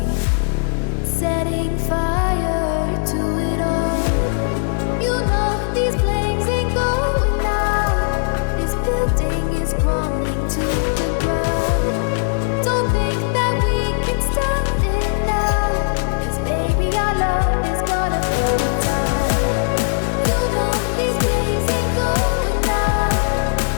setting fire to it all. You know these flames ain't going out. This building is crumbling to the ground. Don't think that we can stop it now, 'cause baby our love is gonna burn it down. You know these flames ain't going out.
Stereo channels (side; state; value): right; silent; digital silence